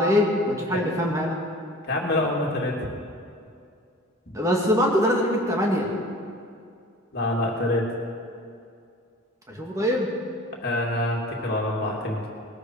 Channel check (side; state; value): both; normal; correlation 0.43